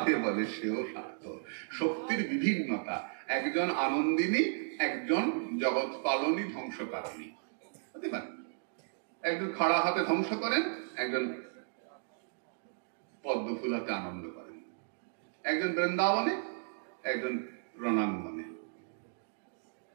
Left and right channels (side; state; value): left; silent; digital silence